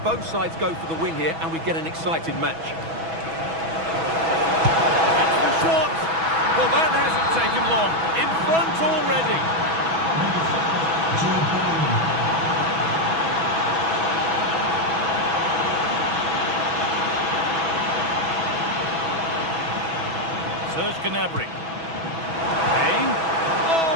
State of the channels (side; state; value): left; late; 6.1 ms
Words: both sides go for the win here and we get an exciting match. It's the shot! Well, that hasn't taken long. In front already. Serge Gnabry. Kane.